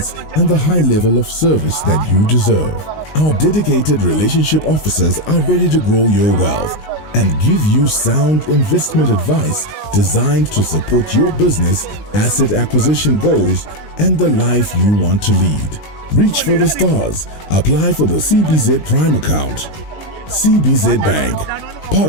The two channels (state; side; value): late; right; 19 ms